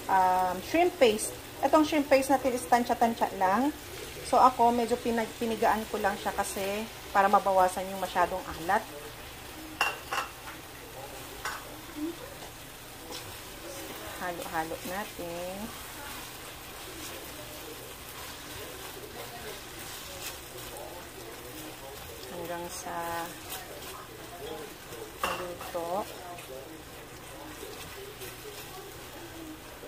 shrimp paste. Itong shrimp paste natin is tansya-tansya lang. So, ako, medyo pinigaan ko lang siya kasi para mabawasan yung masyadong alat. Halo-halo natin. Hanggang sa maluto.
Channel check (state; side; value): identical; both; correlation 1.00